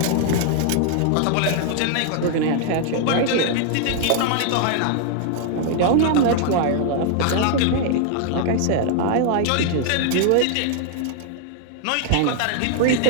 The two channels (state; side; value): different; both; correlation 0.00